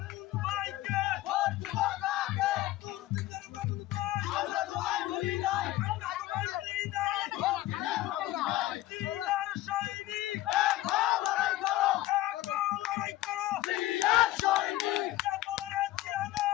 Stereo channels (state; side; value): quieter; right; 15.6 dB